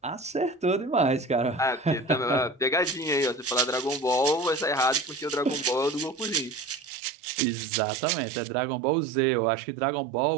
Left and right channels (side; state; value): left; drops out; at 6.9 s